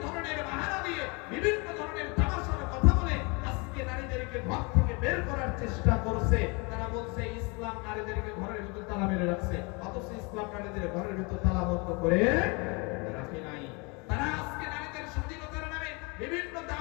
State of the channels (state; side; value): quieter; right; 29.7 dB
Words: ধরনের বাহানা দিয়ে, বিভিন্ন ধরনের তামাশার কথা বলে আজকে নারীদেরকে ঘর থেকে বের করার চেষ্টা করছে। তারা বলছে ইসলাম নারীদেরকে ঘরের ভিতরে তালা মেরে রাখছে, অথচ ইসলাম নারীদের ঘরের ভিতরে তালাবদ্ধ করে রাখে নাই। তারা আজকে নারীদের স্বাধীনতার নামে বিভিন্ন